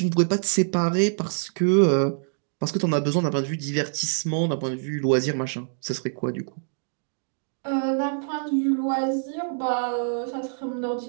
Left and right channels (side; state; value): left; silent; digital silence